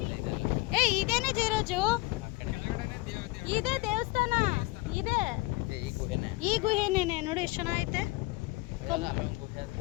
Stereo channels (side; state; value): right; quieter; 22.1 dB